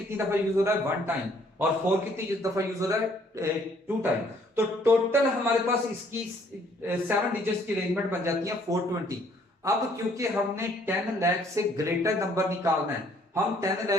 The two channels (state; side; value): normal; both; correlation 0.63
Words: दफा यूज हो रहा है? 1 टाइम। और 4 कितनी दफा यूज हो रहा है? 2 टाइम। तो टोटल हमारे पास इसकी 7 डिजिट्स की अरेंजमेंट बन जाती है 420। अब क्योंकि हमने 10 लाख से ग्रेटर नंबर निकालना है, हम 10